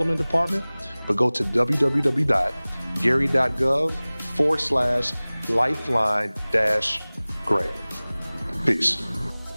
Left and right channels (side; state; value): both; inverted; correlation -1.00